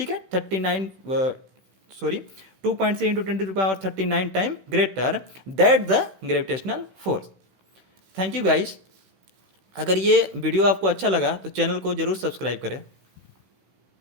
है, 2.3 into 10⁻39 time greater that the gravitational force. Thank you guys. अगर ये वीडियो आपको अच्छा लगा तो चैनल को जरूर सब्सक्राइब करें।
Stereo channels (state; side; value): late; left; 16 ms